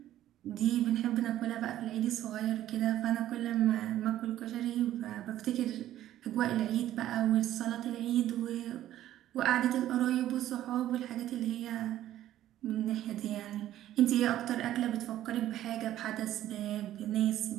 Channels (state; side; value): quieter; left; 12.9 dB